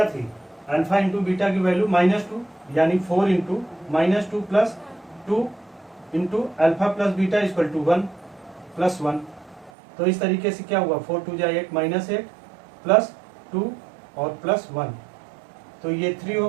थी, अल्फा इंटू बीटा की वैल्यू -2 यानी 4 into -2 plus 2 into alpha plus beta equal to 1 plus 1। तो इस तरीके से क्या हुआ 4 2 जा 8 -8 प्लस 2 और प्लस 1, तो ये 3 हो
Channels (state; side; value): drops out; left; at 9.7 s